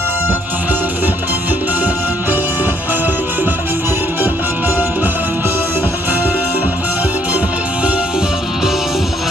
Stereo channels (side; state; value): both; normal; correlation 0.68